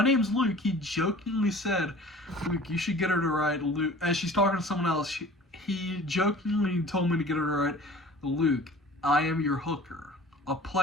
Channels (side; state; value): both; normal; correlation 0.45